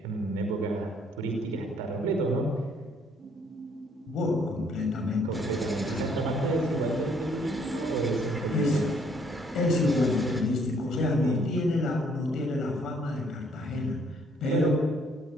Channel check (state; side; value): normal; both; correlation 0.64